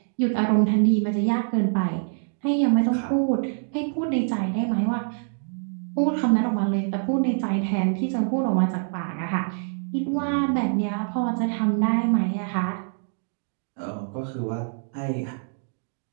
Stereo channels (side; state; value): left; silent; 62 dB below the other